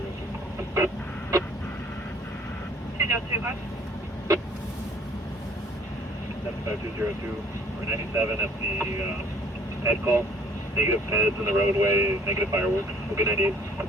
205. 75202 or 97 at the head call. Negative heads in the roadway, negative fireworks. We'll be 98.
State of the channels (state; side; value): normal; both; correlation 0.56